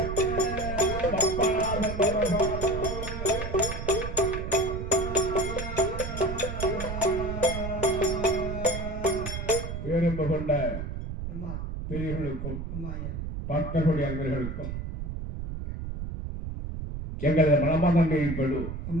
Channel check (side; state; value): right; noise; rumble, 6 dB below the sound